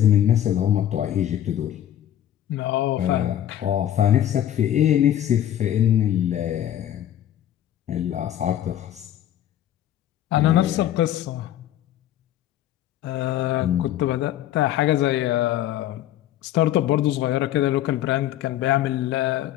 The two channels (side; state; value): right; quieter; 11.8 dB